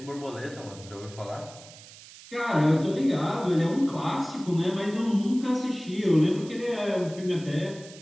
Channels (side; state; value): right; noise; hiss, 19 dB below the sound